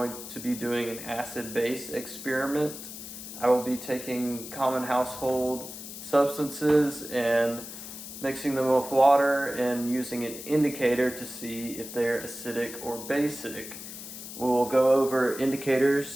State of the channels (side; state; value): left; noise; hiss, 11 dB below the sound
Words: to be doing an acid-base experiment. I will be taking common household substances and mixing them with water and using an indicator to see if they're acidic or basic. We will go over